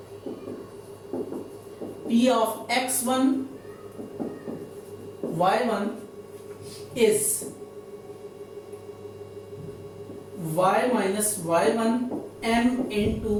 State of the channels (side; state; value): both; identical; correlation 1.00